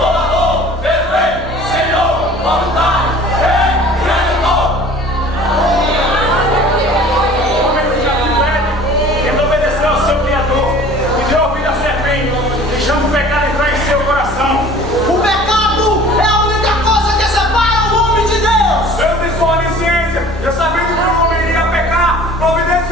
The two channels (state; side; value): normal; both; correlation 0.47